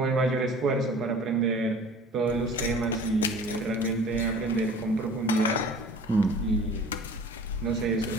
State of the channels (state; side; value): normal; both; correlation 0.45